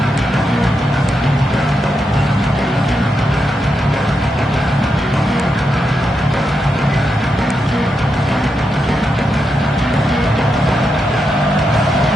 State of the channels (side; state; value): both; normal; correlation 0.85